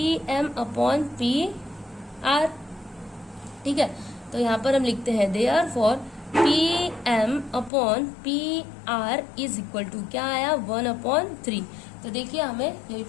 M upon P R. ठीक है, तो यहाँ पर हम लिखते हैं therefore P M upon P R is equal to क्या आया 1/3। तो देखिए हमें यही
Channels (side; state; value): right; drops out; at 7.7 s